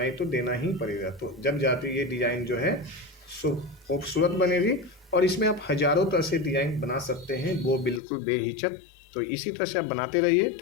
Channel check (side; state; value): right; drops out; at 8.0 s